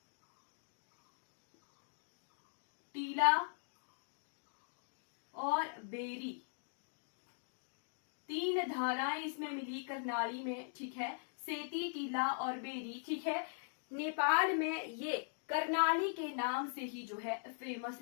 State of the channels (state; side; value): silent; right; digital silence